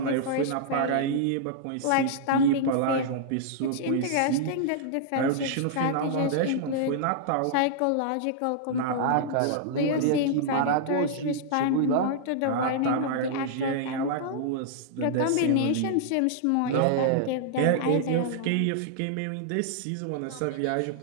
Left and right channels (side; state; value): both; different; correlation -0.01